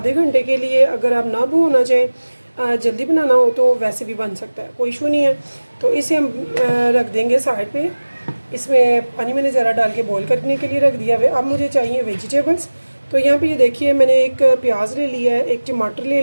घंटे के लिए। अगर आप ना भिगोना चाहें, जल्दी बनाना हो तो वैसे भी बन सकता है, कोई इशू नहीं है। तो इसे हम रख देंगे साइड पे। इसमें पानी मैंने ज़रा डाल के बॉईल करने के लिए रख दिया है। अब मुझे चाहिए वेजिटेबल्स। तो यहाँ पे ये देखिए, मैंने एक प्याज ले लिया है, एक टमाटर ले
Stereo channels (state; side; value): inverted; both; correlation -1.00